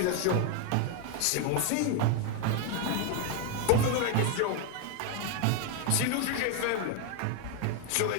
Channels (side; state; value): both; different; correlation 0.01